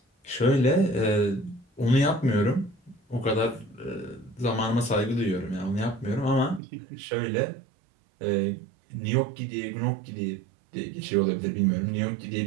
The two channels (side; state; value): left; drops out; at 6.6 s